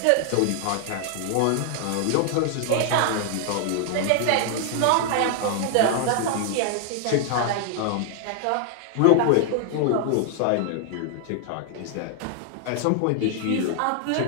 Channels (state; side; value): different; both; correlation 0.00